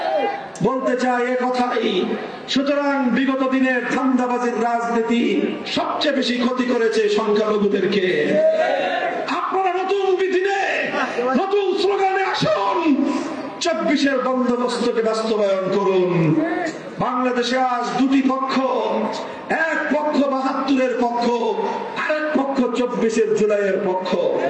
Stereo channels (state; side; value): identical; both; correlation 1.00